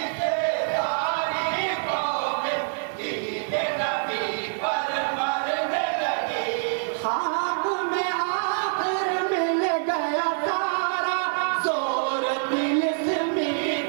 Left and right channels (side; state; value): left; silent; 61 dB below the other